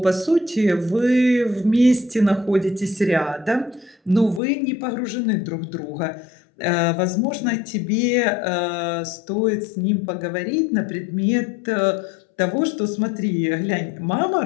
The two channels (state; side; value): drops out; right; at 4.4 s